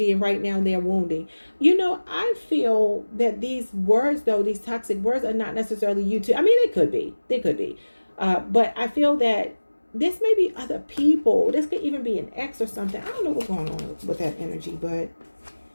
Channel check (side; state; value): both; inverted; correlation -1.00